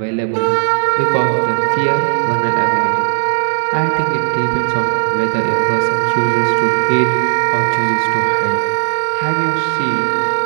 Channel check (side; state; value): left; silent; digital silence